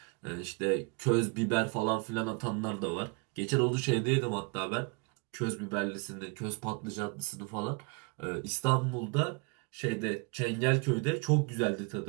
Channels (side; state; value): left; quieter; 31.9 dB